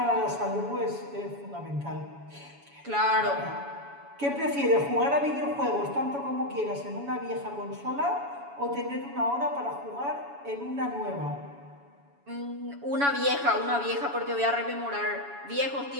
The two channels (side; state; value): left; late; 7.1 ms